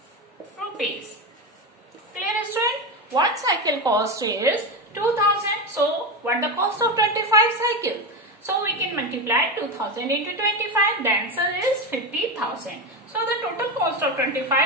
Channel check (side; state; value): both; normal; correlation 0.16